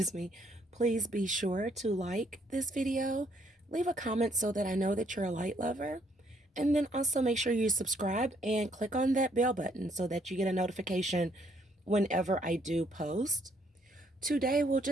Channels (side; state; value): both; normal; correlation 0.68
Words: be sure to like this video, leave a comment so that I know that you're a light lover, and then also make sure you subscribe and click on that bell button so that you get a notification whenever I do post. Today will